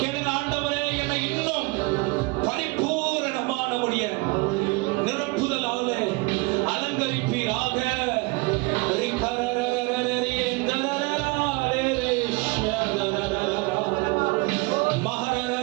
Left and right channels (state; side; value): quieter; left; 26.2 dB